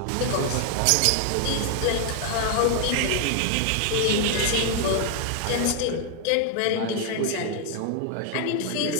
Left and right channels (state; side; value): different; both; correlation 0.00